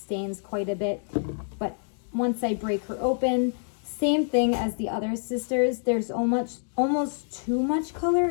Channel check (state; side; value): silent; right; digital silence